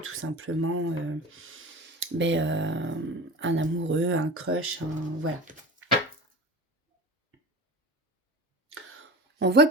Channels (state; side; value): normal; both; correlation 0.33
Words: simplement un amoureux, un crush, voilà. On voit